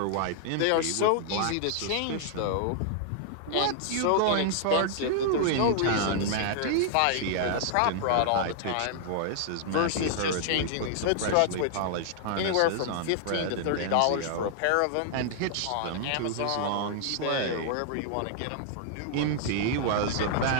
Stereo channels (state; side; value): different; both; correlation -0.01